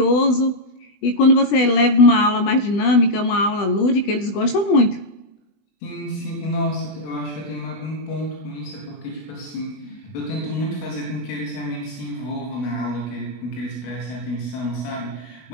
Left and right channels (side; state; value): right; late; 20 ms